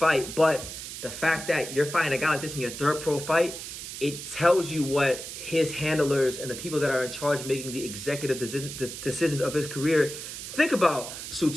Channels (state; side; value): noise; right; hiss, 9 dB below the sound